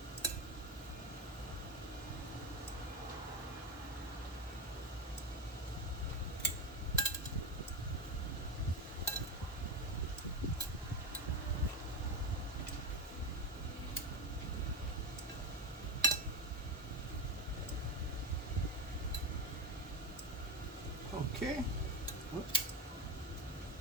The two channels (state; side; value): normal; both; correlation 0.18